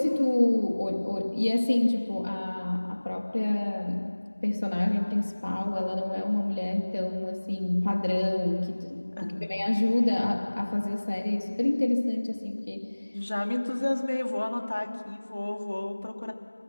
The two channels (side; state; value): both; inverted; correlation -1.00